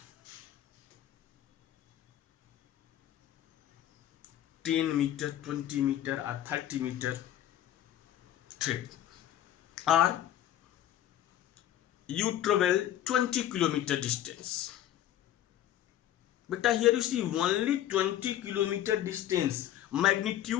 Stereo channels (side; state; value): right; quieter; 12.0 dB